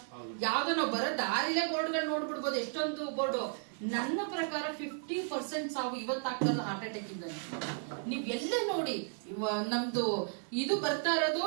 ಯಾವ್ದೋ ನಾವು ಬರೋ ದಾರಿಲೇ ಬೋರ್ಡ್ಗಳು ನೋಡ್ಬಿಡ್ಬೋದು, ಎಷ್ಟೊಂದು ಬೋರ್ಡು. ನನ್ನ ಪ್ರಕಾರ 50% ಸಾವು ಇವತ್ತಾಗ್ತಲ್ಲ ಹಾರ್ಟ್ ಅಟ್ಯಾಕ್ ಇಂದ. ನೀವ್ ಎಲ್ಲೇ ನೋಡಿ ನಮ್ದು ಇದು ಬರ್ತಾ ಇರೋದು.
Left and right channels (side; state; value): left; silent; 55 dB below the other